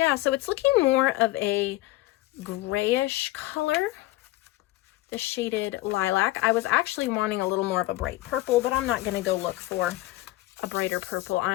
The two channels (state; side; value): quieter; right; 17.6 dB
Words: so it's looking more of a grayish color, the Shaded Lilac. I was actually wanting a little more of a bright purple, but I'm not going to go look for a brighter purple.